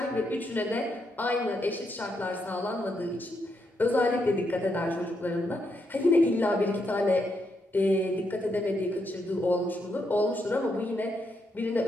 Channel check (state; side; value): normal; both; correlation 0.79